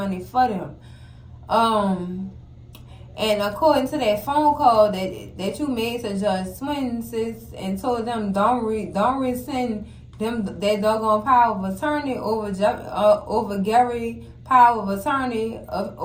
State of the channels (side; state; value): both; identical; correlation 1.00